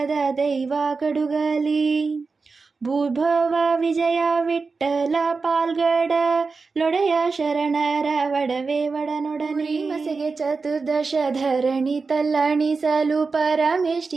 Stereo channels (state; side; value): quieter; left; 4.4 dB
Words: ದೈವ ಕಡುಗಲಿ ಭೂಭವ ವಿಜಯ ವಿಠ್ಠಲ ಪಾಲ್ಗಡ ಲೊಡೆಯ ಶರಣರ ವಡವೆ ವಡನೊಡನೆ ಮಸೆಗೆ ಚತುರ್ದಶ ಧರಣಿ ತಲ್ಲಣಿಸಲು